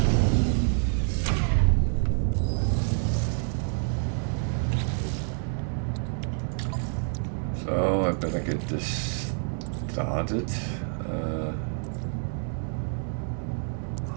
So I better get this started.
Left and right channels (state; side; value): silent; left; 60 dB below the other